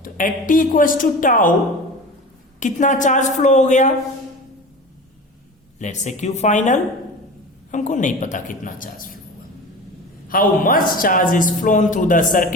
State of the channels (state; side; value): normal; both; correlation 0.34